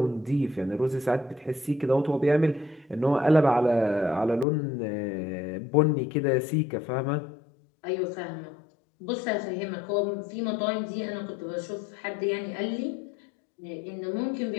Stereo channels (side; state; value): right; drops out; at 4.5 s